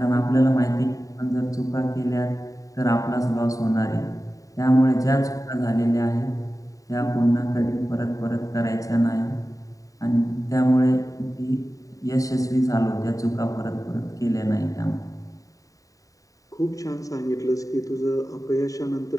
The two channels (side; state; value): right; late; 0.16 ms